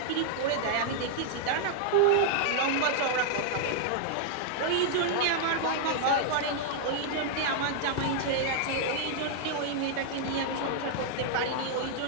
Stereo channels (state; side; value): different; both; correlation -0.01